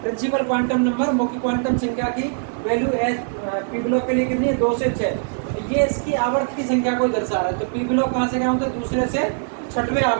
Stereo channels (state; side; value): silent; left; 58 dB below the other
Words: प्रिंसिपल क्वांटम नंबर मुख्य क्वांटम संख्या की वैल्यू एस पी ब्लॉक के लिए कितनी है? 2 से 6। ये इसकी आवर्त की संख्या को दर्शा रहा है। तो पी ब्लॉक कहाँ से क्या होता है? दूसरे से छठवें